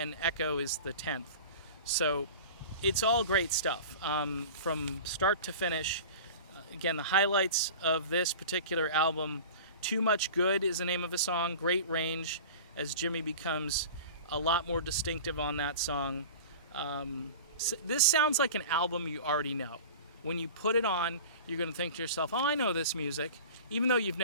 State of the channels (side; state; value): both; inverted; correlation -0.37